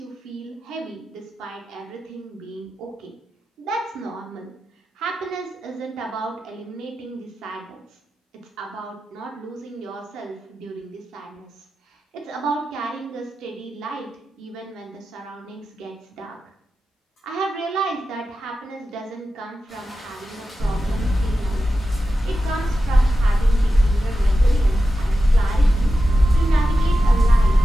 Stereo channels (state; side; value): normal; both; correlation 0.92